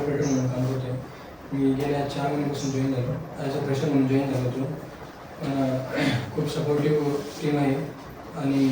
म्हणून काम करतो. मी गेल्या 4 महिन्यापासून जॉईन झालो, ॲज अ फ्रेशर म्हणून जॉईन झालो होतो. खूप सपोर्टिव्ह टीम आहे आणि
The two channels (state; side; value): noise; right; rumble, 30 dB below the sound